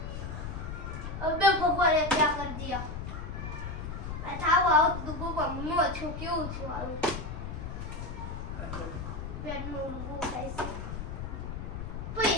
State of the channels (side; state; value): left; noise; rumble, 6 dB below the sound